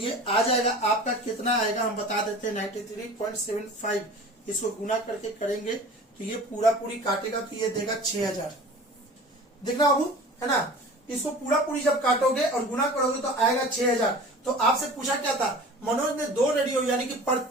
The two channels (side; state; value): both; normal; correlation 0.41